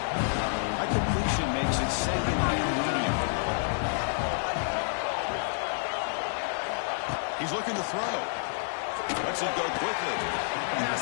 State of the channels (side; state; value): right; silent; digital silence